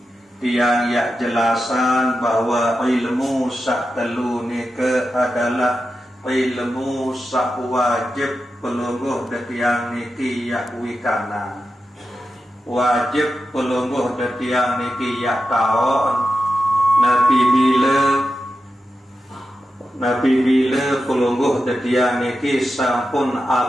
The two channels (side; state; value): both; normal; correlation 0.90